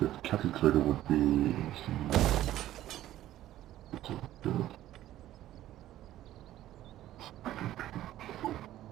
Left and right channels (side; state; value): left; quieter; 13.6 dB